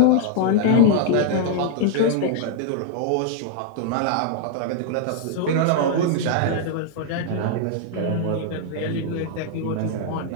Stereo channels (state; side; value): different; both; correlation 0.00